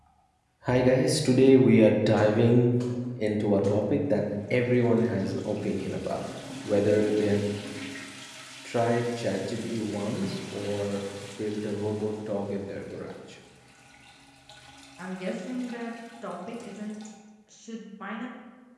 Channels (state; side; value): identical; both; correlation 1.00